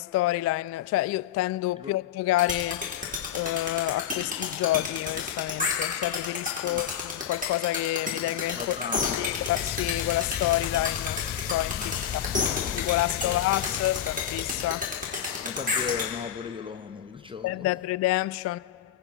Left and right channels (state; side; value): quieter; right; 10.1 dB